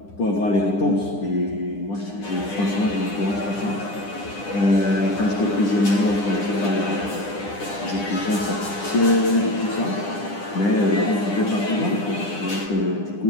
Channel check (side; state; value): right; late; 9.9 ms